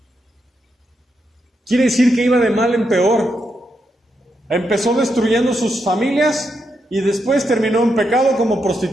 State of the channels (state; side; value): normal; both; correlation 0.82